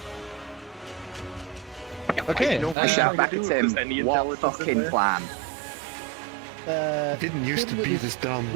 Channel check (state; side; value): drops out; left; at 2.8 s